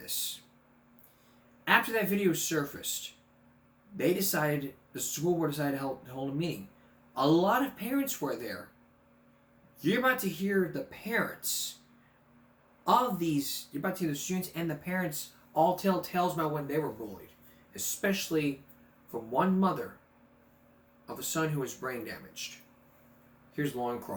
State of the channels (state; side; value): identical; both; correlation 1.00